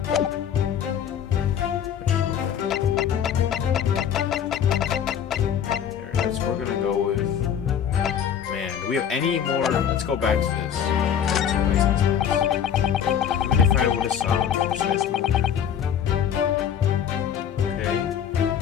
We're gonna go with. Man, do we have any more? Let's go back to this. Even if I would have saw precise movement.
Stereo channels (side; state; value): right; quieter; 8.7 dB